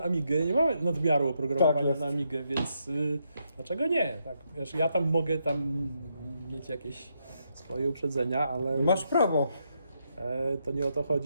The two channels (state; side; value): inverted; both; correlation -0.79